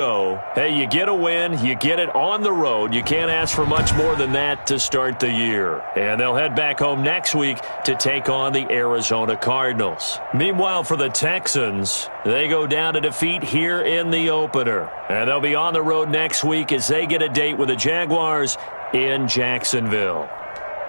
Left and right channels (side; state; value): both; inverted; correlation -1.00